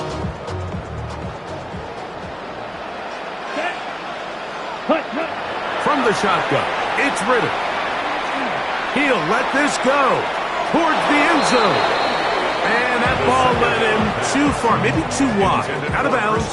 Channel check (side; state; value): right; noise; hum, 29 dB below the sound